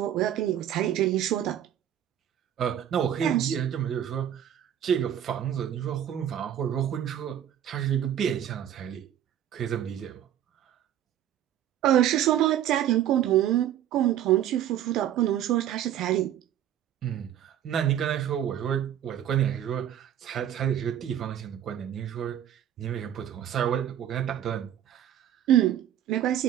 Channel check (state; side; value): quieter; left; 10.7 dB